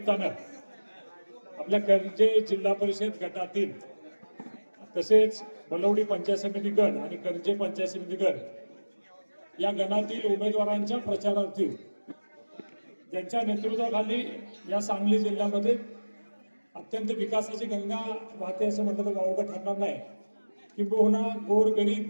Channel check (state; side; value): inverted; both; correlation -1.00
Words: आपल्या कर्जे जिल्हा परिषद गटातील तसेच बलवडी पंचायत समिती गण आणि कर्जे पंचायत समिती गण या गणातील उमेदवारांच्या प्रचारार्थी ज्यांच्या नेतृत्वाखाली या सांगली जिल्ह्यामध्ये अत्यंत विकासाची गंगा वाहते असं म्हटलं तर वावगं ठरणार नाही, किंबहुना गोरगरीब